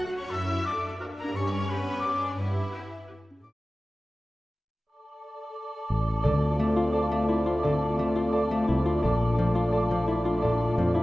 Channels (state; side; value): normal; both; correlation 0.97